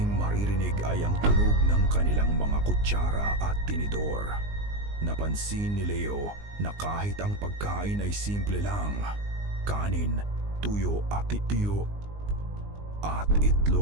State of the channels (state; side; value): late; left; 19 ms